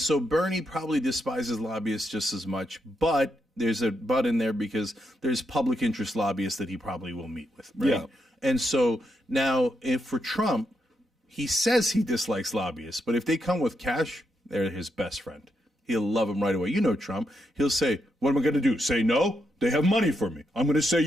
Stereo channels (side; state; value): both; normal; correlation 0.82